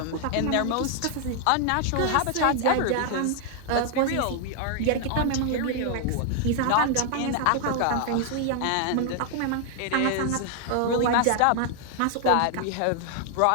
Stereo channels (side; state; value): both; different; correlation 0.00